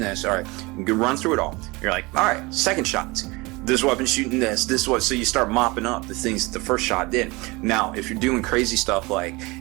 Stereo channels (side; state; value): left; quieter; 24.0 dB